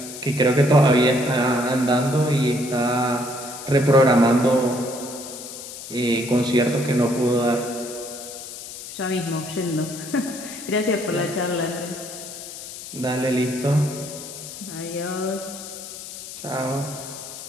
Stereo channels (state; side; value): noise; left; hiss, 11 dB below the sound